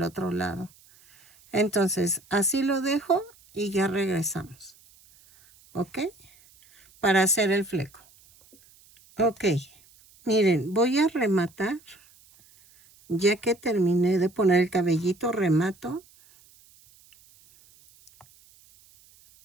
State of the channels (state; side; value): noise; right; hiss, 28 dB below the sound